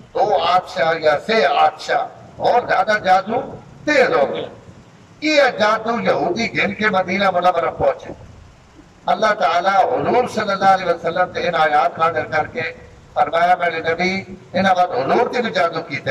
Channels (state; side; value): identical; both; correlation 1.00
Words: 2 آدشاہ یا 6 آدشاہ اور زیادہ جادو تیز ہو گئے یہ جادو یہودی گھن کے مدینہ منورہ پہنچے اللہ تعالیٰ حضور صلی اللہ علیہ وسلم سے ان آیات نازل کر کے فرمایا میرے نبی انہاں بعد حضور کی بھی جادو